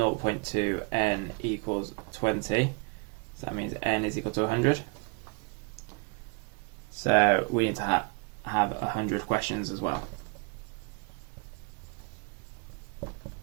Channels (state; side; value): quieter; left; 31.4 dB